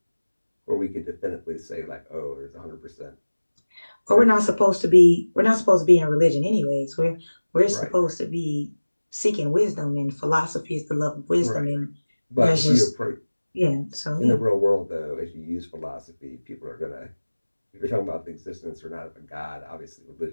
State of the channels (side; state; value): both; inverted; correlation -1.00